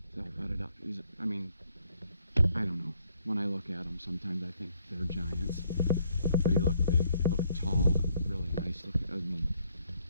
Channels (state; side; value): inverted; both; correlation -0.69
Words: So I butted up. I mean, I don't know. When I look at him, sometimes I think they're giants. But he looked big, he looked tall, really nice looking. I mean,